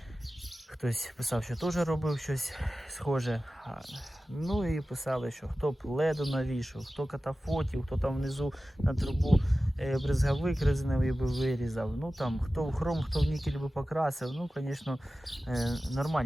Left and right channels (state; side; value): normal; both; correlation 0.95